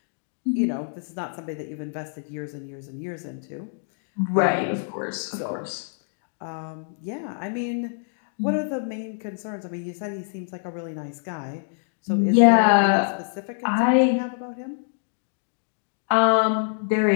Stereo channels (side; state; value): right; silent; digital silence